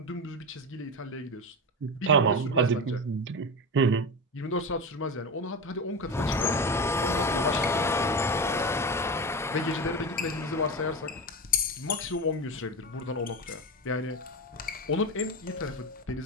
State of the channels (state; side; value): normal; both; correlation 0.20